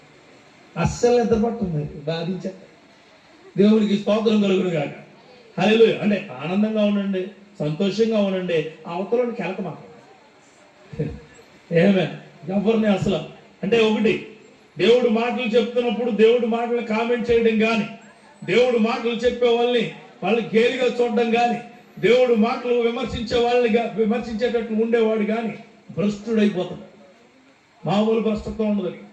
అస్సలు నిద్ర పడుతుంది, బాధించ. దేవుడికి స్తోత్రం కలుగును కాక. హల్లెలూయా! అంటే ఆనందంగా ఉండండి, సంతోషంగా ఉండండి. అవతలని కెలక మాట్లాడండి. ఏమే ఎవరిని అసలు అంటే ఒకటి, దేవుడు మాటలు చెప్తున్నప్పుడు దేవుడు మాటలు కామెంట్ చేయడం కానీ, దేవుడు మాటలు చెప్పే వాళ్ళని గేలిగా చూడడం కానీ, దేవుడు మాటలు విమర్శించేటట్లు ఉండేవాడు కానీ భ్రష్టుడైపోతాడు. మామూలు భ్రష్టత్వం ఉండదు.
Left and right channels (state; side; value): identical; both; correlation 1.00